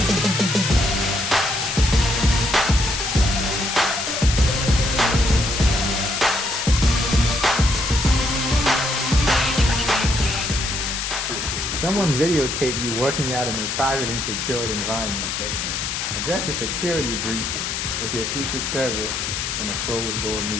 Someone videotaped you working out in a private and secured environment. So address a security breach with your Secret Service in a closed-door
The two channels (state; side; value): noise; left; hiss, 2 dB below the sound